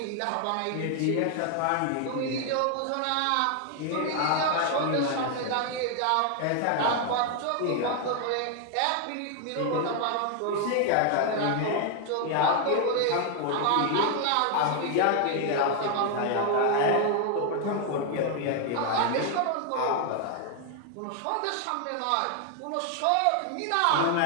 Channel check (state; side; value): different; both; correlation 0.00